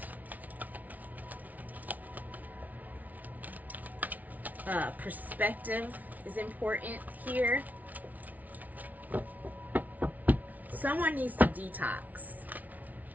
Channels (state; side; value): late; left; 0.075 ms